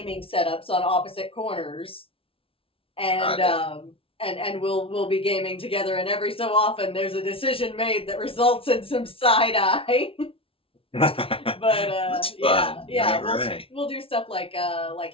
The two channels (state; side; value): late; right; 0.26 ms